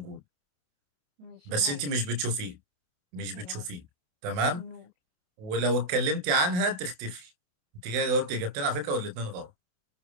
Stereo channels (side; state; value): left; late; 27 ms